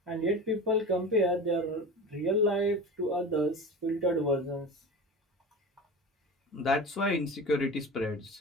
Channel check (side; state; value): both; normal; correlation 0.32